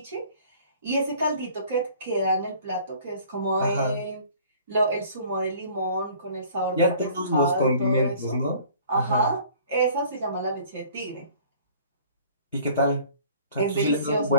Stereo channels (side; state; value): both; inverted; correlation -0.51